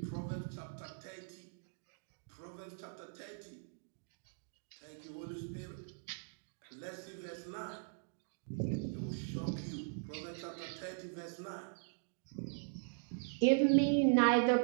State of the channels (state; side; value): silent; left; digital silence